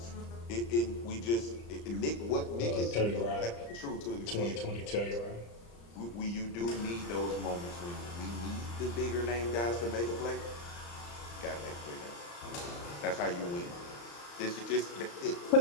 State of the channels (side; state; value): right; late; 35 ms